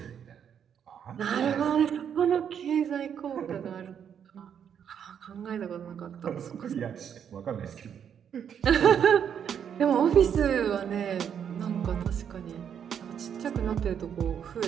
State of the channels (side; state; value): left; quieter; 8.3 dB